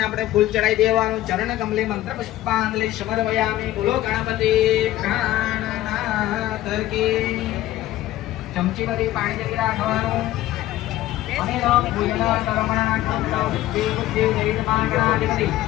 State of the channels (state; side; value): quieter; right; 14.9 dB